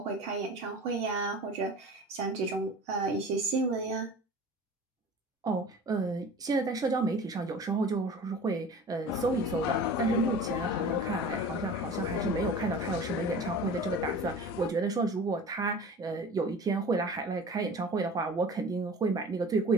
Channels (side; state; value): both; normal; correlation 0.39